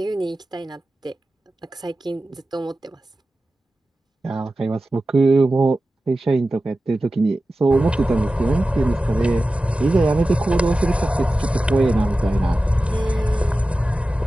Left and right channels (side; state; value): both; normal; correlation 0.94